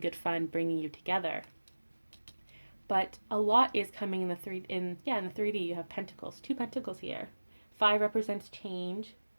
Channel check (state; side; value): inverted; both; correlation -1.00